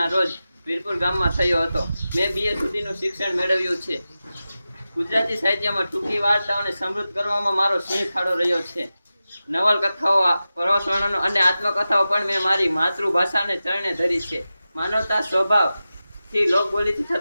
રોજ વીરપુર ગામમાં થયો હતો. મેં BA સુધીનું શિક્ષણ મેળવ્યું છે. ગુજરાતી સાહિત્યમાં ટૂંકી વાર્તાઓને સમૃદ્ધ કરવામાં મારો સિંહ ફાળો રહ્યો છે. નવલકથાઓ, પ્રવાસ વર્ણનો અને આત્મકથાઓ પણ મેં મારી માતૃભાષાને ચરણે ધરી છે. માનવતા સ્વભાવથી લોકબોલીથી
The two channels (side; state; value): both; inverted; correlation -0.94